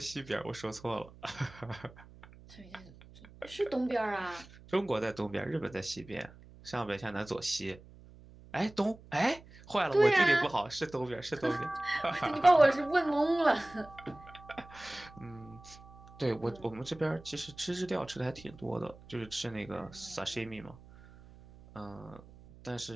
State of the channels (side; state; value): right; noise; hum, 21 dB below the sound